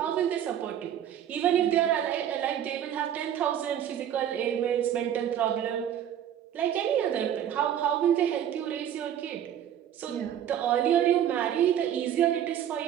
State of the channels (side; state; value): left; quieter; 10.2 dB